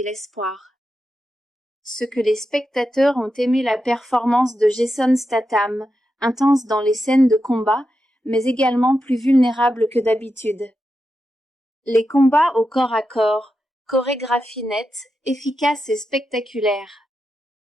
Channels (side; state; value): both; normal; correlation 0.88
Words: l'espoir. Ce que les spectateurs ont aimé la performance de Jason Statham, intense dans les scènes de combat, mais également plus vulnérable que d'habitude. Les combats au corps à corps, chorégraphie nette, efficace et spectaculaire.